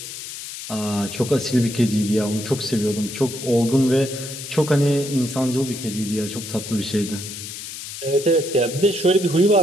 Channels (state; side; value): noise; left; hiss, 10 dB below the sound